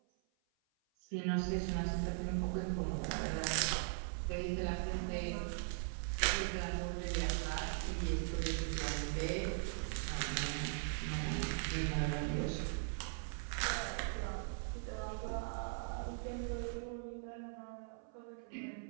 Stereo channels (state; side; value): silent; left; 51 dB below the other